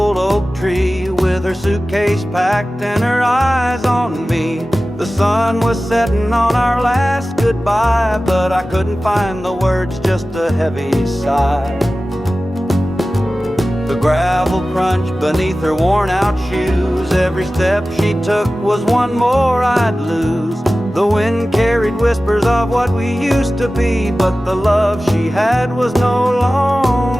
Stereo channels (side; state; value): both; normal; correlation 0.96